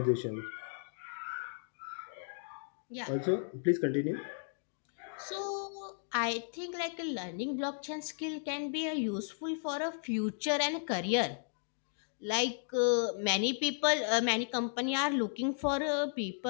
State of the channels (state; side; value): silent; right; digital silence